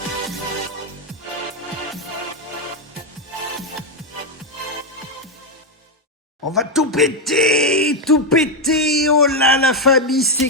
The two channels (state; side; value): normal; both; correlation 0.04